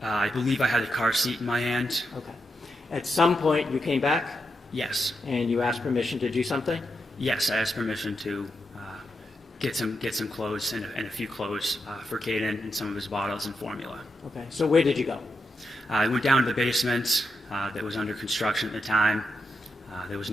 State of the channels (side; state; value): both; normal; correlation 0.85